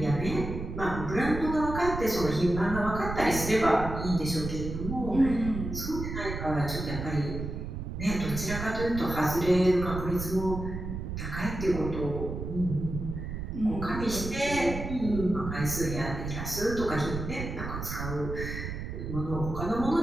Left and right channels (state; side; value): noise; right; rumble, 6 dB below the sound